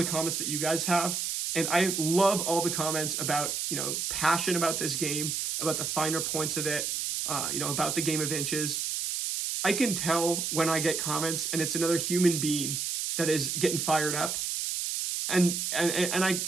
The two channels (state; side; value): noise; right; hiss, 1 dB below the sound